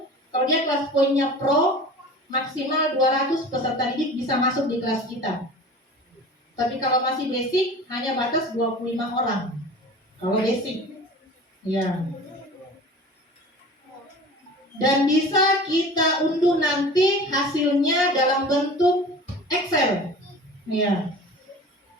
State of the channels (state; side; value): normal; both; correlation 0.39